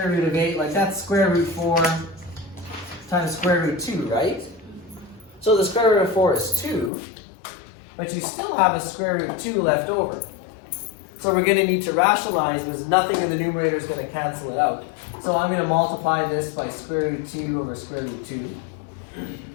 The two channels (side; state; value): right; drops out; at 6.9 s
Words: root of 8, like that's square root 4 times square root 2, right? So the square root of 4 is 2, but you still have a square root of 2 left over. So we're going to need to rationalize because nothing in the numerator is going to cancel it out. So I'm going to multiply this by square root 2 over square root 2.